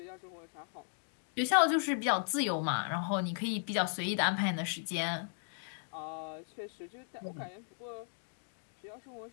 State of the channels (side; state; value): right; silent; digital silence